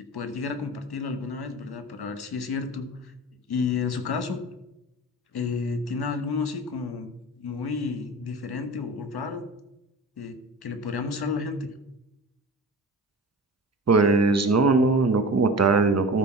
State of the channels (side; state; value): both; normal; correlation 0.34